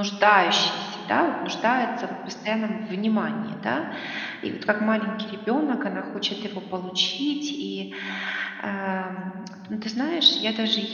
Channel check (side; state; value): both; identical; correlation 1.00